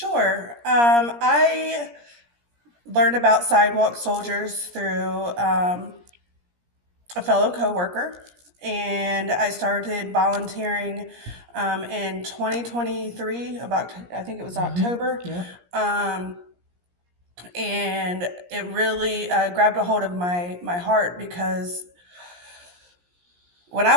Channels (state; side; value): late; left; 17 ms